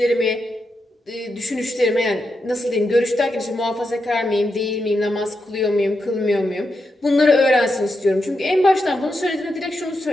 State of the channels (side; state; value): both; normal; correlation 0.86